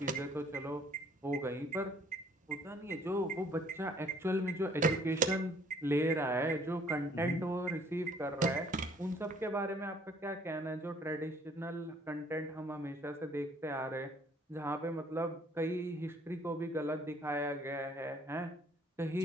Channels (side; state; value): both; normal; correlation 0.60